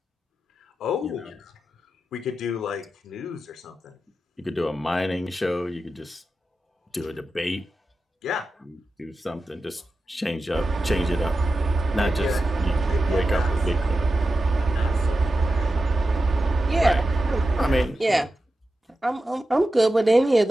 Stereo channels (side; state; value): both; normal; correlation 0.91